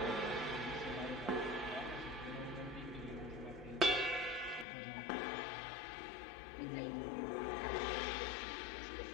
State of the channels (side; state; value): right; drops out; at 4.7 s